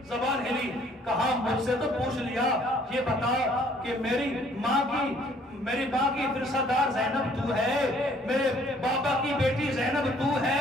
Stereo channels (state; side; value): normal; both; correlation 0.60